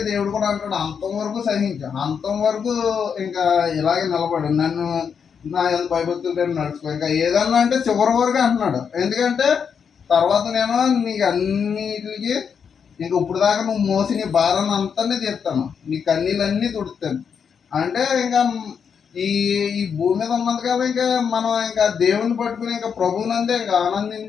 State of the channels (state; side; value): quieter; right; 6.8 dB